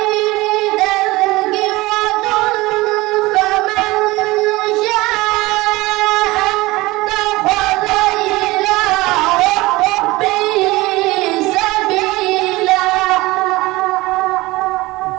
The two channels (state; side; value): quieter; left; 20.5 dB